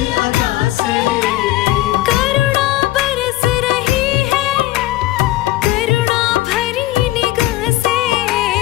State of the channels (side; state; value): right; quieter; 16.3 dB